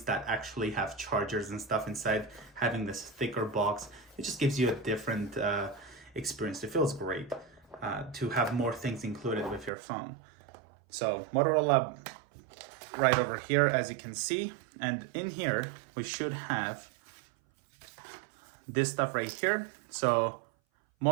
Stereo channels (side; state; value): left; drops out; at 9.7 s